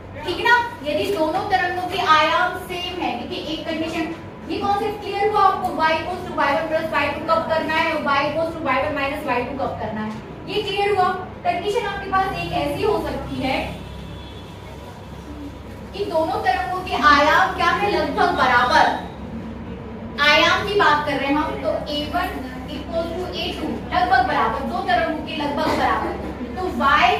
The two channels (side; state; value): both; identical; correlation 1.00